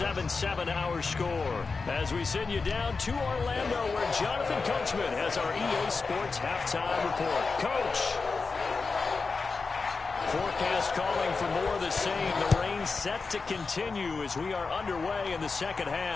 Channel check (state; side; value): quieter; right; 4.4 dB